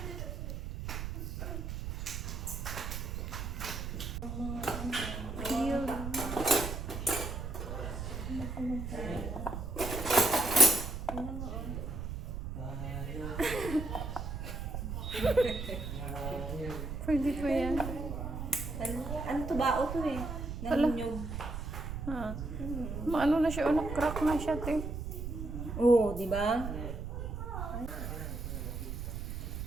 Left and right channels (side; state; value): right; noise; rumble, 5 dB below the sound